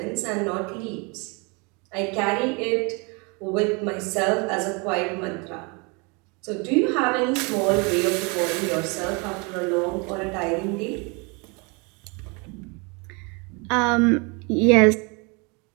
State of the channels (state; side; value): quieter; left; 30.8 dB